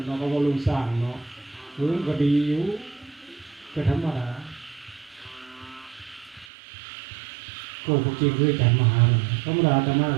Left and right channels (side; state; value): left; drops out; at 6.5 s